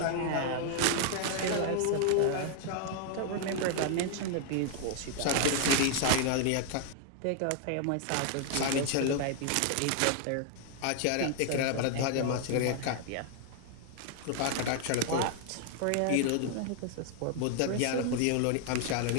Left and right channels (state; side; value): different; both; correlation 0.00